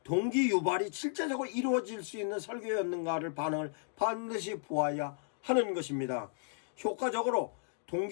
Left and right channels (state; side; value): silent; right; digital silence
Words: 동기 유발이 실제적으로 이루어질 수 있는 설교였는가를 반응을 반드시 보아야 하는 것입니다. 효과적으로